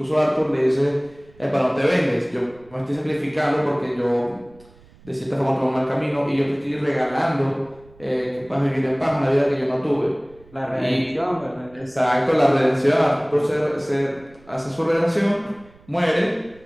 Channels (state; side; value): noise; right; rumble, 26 dB below the sound